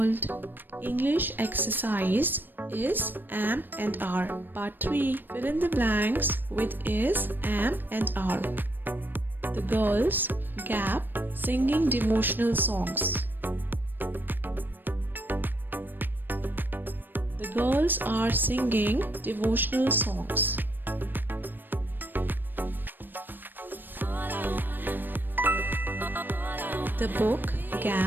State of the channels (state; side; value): late; left; 0.093 ms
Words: English exercise is am and are. Part 3. Fill in the blanks with is, am and are. The girls gap singing devotional songs. The girls are singing devotional songs. The book